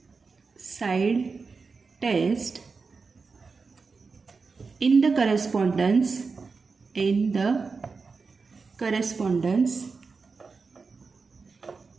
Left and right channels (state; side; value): quieter; left; 4.6 dB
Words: side test in the correspondence